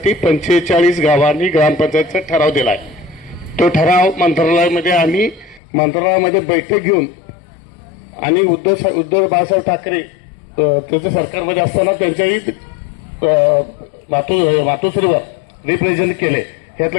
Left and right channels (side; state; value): right; drops out; at 5.6 s